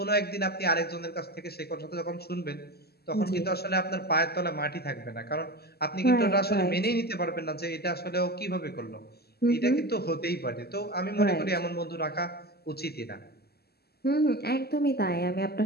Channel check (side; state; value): right; late; 0.46 ms